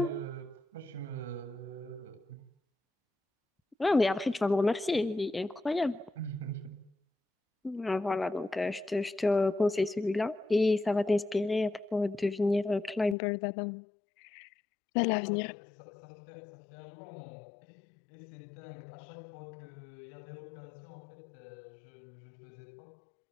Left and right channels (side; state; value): right; drops out; at 13.2 s